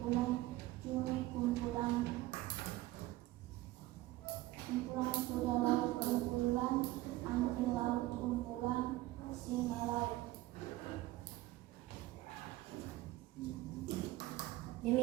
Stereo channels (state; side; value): quieter; left; 17.5 dB